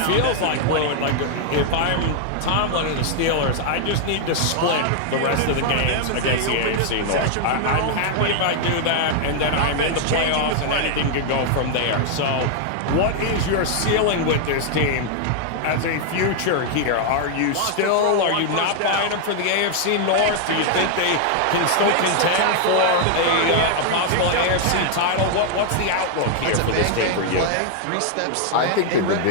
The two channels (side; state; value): both; different; correlation 0.00